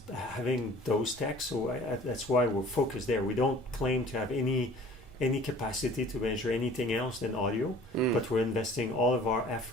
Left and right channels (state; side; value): normal; both; correlation 0.48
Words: having those techs, so that's why we're focused there. We don't claim to have any capacity to measure anything else than audio, but we're investing all of our